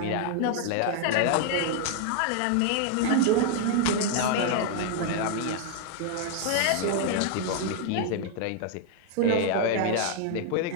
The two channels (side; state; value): both; different; correlation 0.00